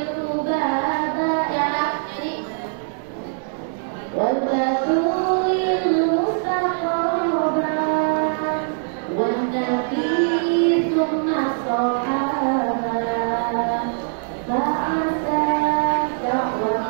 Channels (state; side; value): silent; left; digital silence